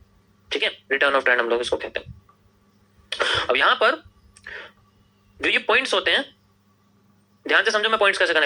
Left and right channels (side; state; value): both; identical; correlation 1.00